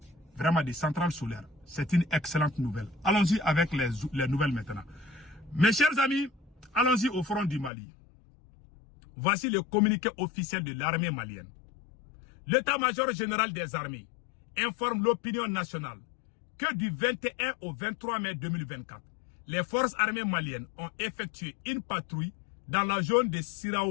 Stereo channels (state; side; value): drops out; right; at 7.7 s